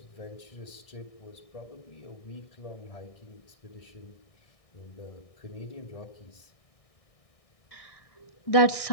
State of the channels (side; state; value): right; late; 1.6 ms